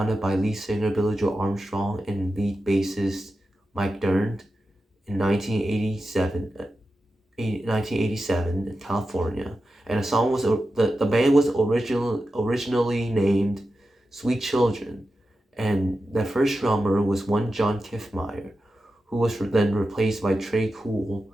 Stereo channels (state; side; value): normal; both; correlation 0.91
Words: by lead singer Billy Joe Armstrong and lead bassist Mike Dirnt in 1987 in California, and the band was originally named Sweet Children, and their first drummer was one John Kiffmeyer, who was then replaced by Trey Cool